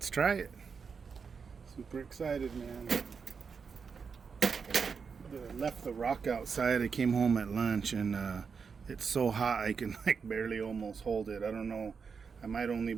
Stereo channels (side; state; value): left; quieter; 5.7 dB